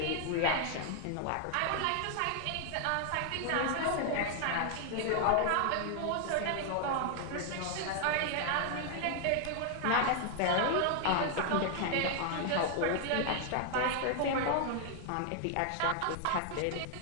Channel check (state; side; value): different; both; correlation 0.00